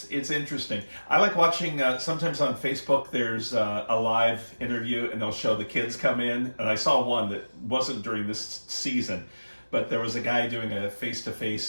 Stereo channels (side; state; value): both; inverted; correlation -1.00